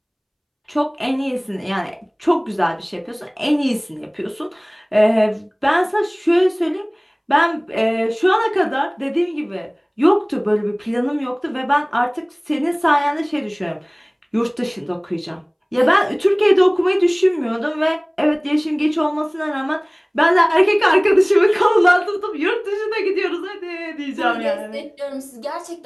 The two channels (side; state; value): both; identical; correlation 1.00